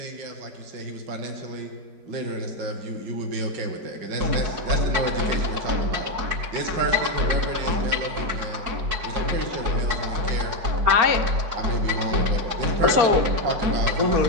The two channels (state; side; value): late; left; 4.7 ms